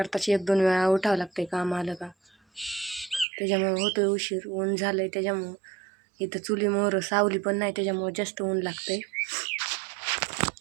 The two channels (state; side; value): drops out; left; at 3.2 s